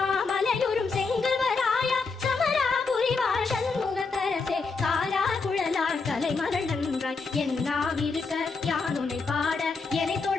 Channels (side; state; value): right; quieter; 4.4 dB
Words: மலையொரும் செங்கல்வராயா சமரா புரிவாழ் சண்முகத்தரசே காலா குழலார் கலைமகள் நன்றாய் என்னாவிருக்க யானுனை பாட என்னை